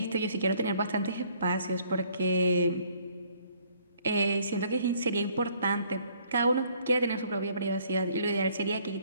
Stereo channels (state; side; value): inverted; both; correlation -0.62